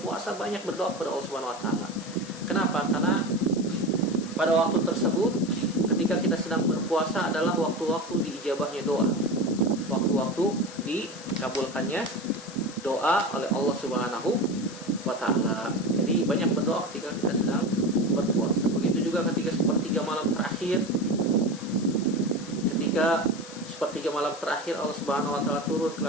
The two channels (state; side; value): noise; left; hiss, 16 dB below the sound